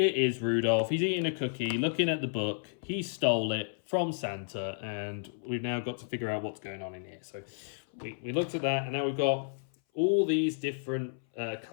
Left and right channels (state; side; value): silent; right; 57 dB below the other